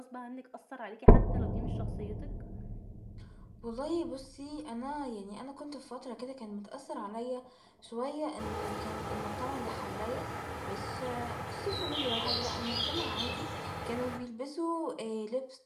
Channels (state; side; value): identical; both; correlation 1.00